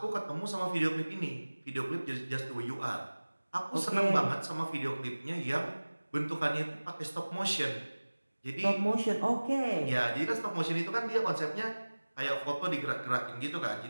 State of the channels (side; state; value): both; inverted; correlation -1.00